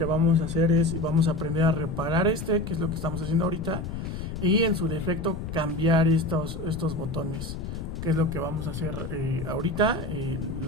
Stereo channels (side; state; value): left; noise; rumble, 7 dB below the sound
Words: vamos a hacer es, vamos a aprender a reparar que es lo que estamos haciendo ahorita, y en su defecto cambiar estos botones, que es lo que vamos a hacer ahorita.